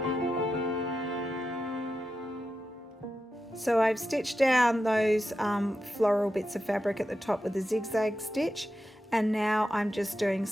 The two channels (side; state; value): both; normal; correlation 0.89